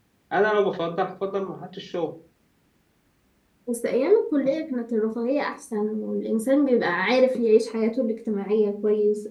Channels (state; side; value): identical; both; correlation 1.00